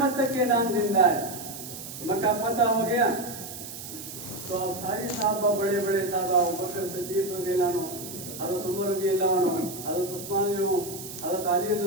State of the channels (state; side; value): noise; right; hiss, 11 dB below the sound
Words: تک کے نام زندہ ہے۔ مکہ فتح ہو گیا تو اب سارے صحابہ، بڑے بڑے صحابہ، ابوبکر صدیق رضی اللہ عنہ، حضرت عمر رضی اللہ عنہ، حضرت عثمان رضی اللہ عنہ، حضرت علی رضی